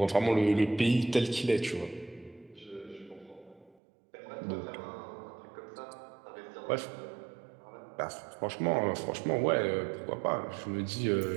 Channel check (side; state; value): left; drops out; at 3.8 s